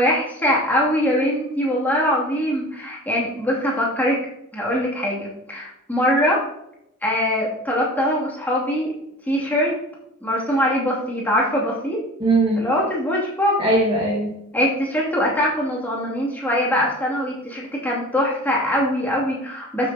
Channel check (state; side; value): normal; both; correlation 0.39